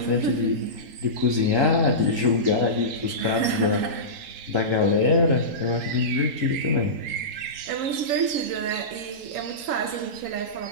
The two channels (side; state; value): left; late; 3.8 ms